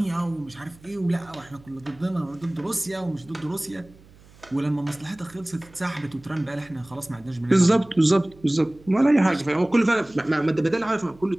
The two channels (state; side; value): noise; right; hum, 25 dB below the sound